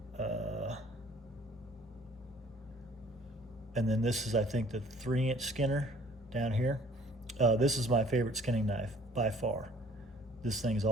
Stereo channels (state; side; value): normal; both; correlation 0.56